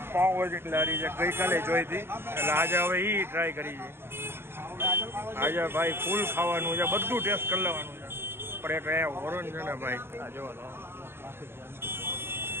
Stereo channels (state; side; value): late; left; 0.11 ms